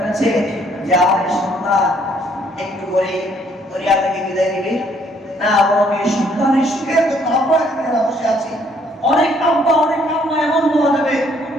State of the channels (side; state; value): both; normal; correlation 0.65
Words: যে আমার সন্তান একটু করে দরিয়া থেকে বিদায় নিবে? না, বরং এই সন্তানের সুখের জন্য আমরা এখানে বসে আছি। অনেক আব্বা অনেক আম্মা এমন বলা যাবে